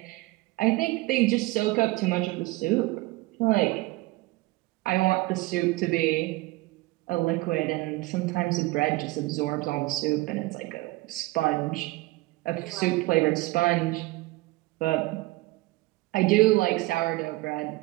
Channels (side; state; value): left; quieter; 20.6 dB